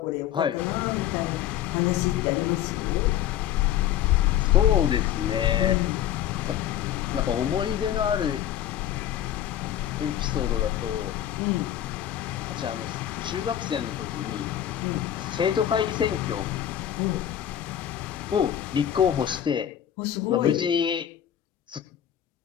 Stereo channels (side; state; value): right; quieter; 10.9 dB